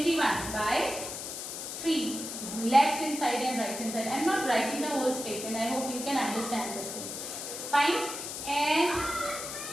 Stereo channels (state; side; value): noise; left; hiss, 7 dB below the sound